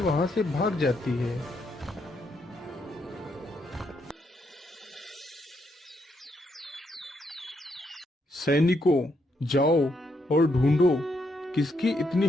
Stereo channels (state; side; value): normal; both; correlation 0.77